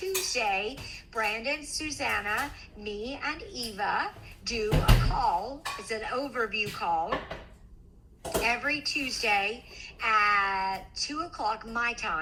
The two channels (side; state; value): both; identical; correlation 1.00